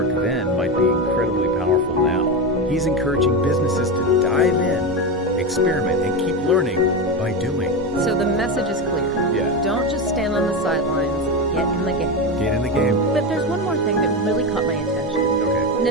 then might be incredibly powerful now. He's encouraging businesses to dive in, experiment, and keep learning by doing. So the message is clear. Yeah. Don't just stand on the sidelines, get in the game. Get in the game. But there's one more thing that really caught my attention. Okay.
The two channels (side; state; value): both; normal; correlation 0.16